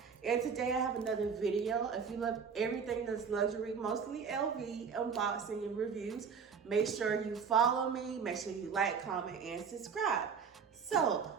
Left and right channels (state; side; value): quieter; left; 6.2 dB